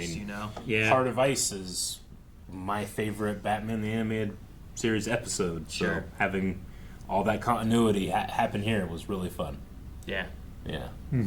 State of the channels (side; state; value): both; identical; correlation 1.00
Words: Yeah. Heart of Ice is my favorite Batman the Animated Series episode. So Sure. having all that continuity happen here was really fun. Yeah. Yeah.